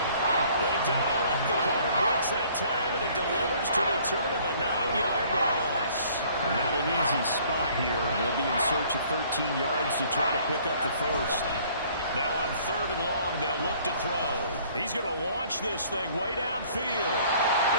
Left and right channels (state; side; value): inverted; both; correlation -0.57